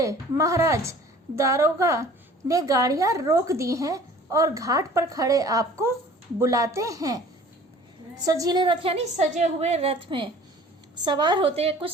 महाराज, दारोगा ने गाड़ियां रोक दी हैं और घाट पर खड़े आपको बुलाते हैं। सजीले रथ यानी सजे हुए रथ में सवार होते कुछ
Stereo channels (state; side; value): normal; both; correlation 0.48